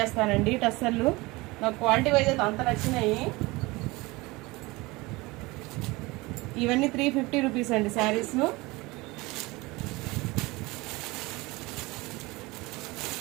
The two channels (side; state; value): left; quieter; 22.6 dB